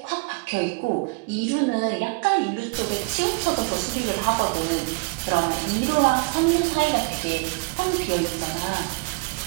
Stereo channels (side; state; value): left; quieter; 31.5 dB